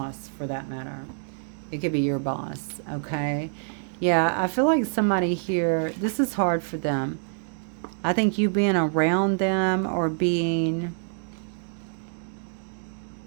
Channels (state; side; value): silent; left; digital silence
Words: for that matter. It could be your boss. Okay. Yeah. I feel like somebody here, this is hard for them. I think you being around them or being...